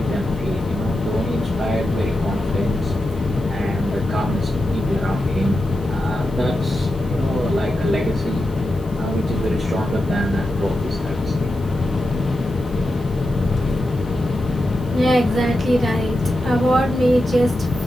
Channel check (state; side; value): noise; right; hiss, 26 dB below the sound